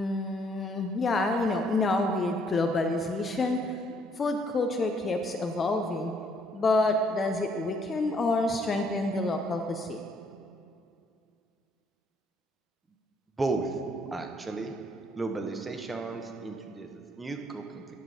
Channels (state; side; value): normal; both; correlation 0.67